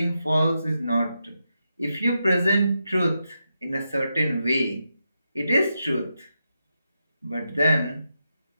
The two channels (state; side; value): inverted; both; correlation -0.86